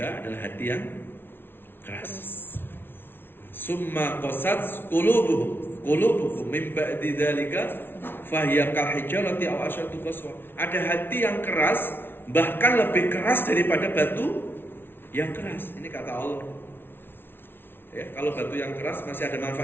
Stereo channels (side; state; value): right; late; 0.11 ms